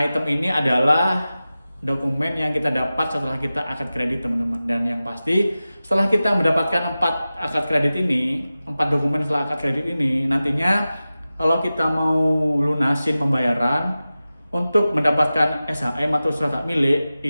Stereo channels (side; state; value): both; inverted; correlation -0.95